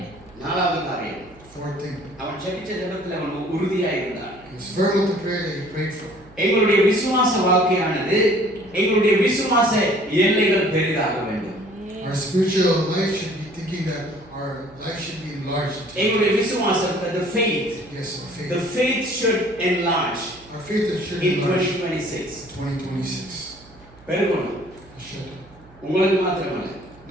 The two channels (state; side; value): noise; right; hum, 24 dB below the sound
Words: நாலாவது காரியம், Fourth thing. அவன் ஜெபிச்ச ஜெபத்தில் அவன் உறுதியா இருந்தான். He was firm with the prayer that he prayed for. எங்களுடைய விசுவாச வாழ்க்கையானது எங்களுடைய விசுவாச எல்லைகள் பெரிதாக வேண்டும். Our spiritual life should be thinking that our life should be enlarged. எங்களுடைய விசுவாசம், the faith, Yes, our faith. the faith should enlarge Our faith should in enlarge 2026. 2026. பெருகணும். It should. உங்களுக்கு மாத்திரமல்ல,